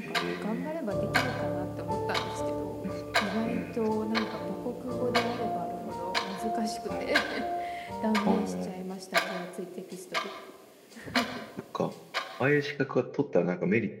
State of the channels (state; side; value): identical; both; correlation 1.00